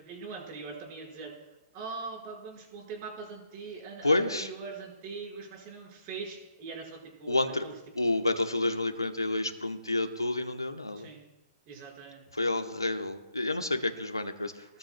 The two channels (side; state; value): both; inverted; correlation -0.81